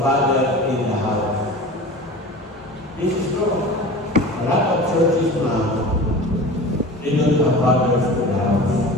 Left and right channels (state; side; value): normal; both; correlation 0.36